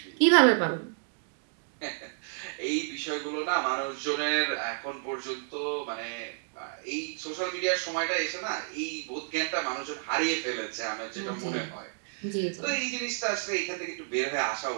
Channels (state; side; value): silent; left; digital silence